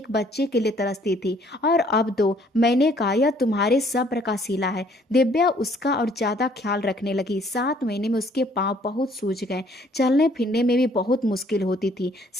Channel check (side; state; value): both; normal; correlation 0.61